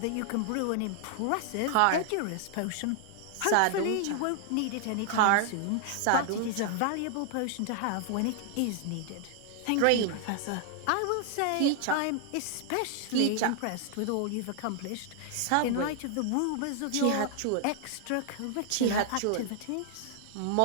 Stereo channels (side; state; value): both; different; correlation 0.00